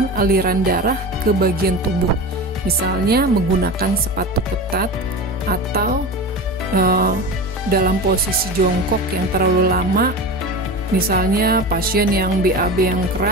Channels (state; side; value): normal; both; correlation 0.28